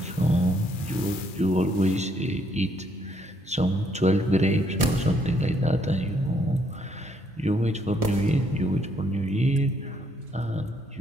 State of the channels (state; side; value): normal; both; correlation 0.70